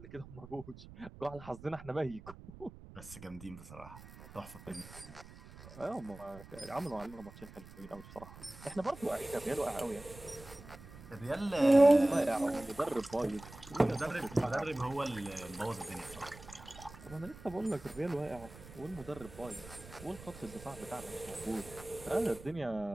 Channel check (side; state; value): right; noise; rumble, 17 dB below the sound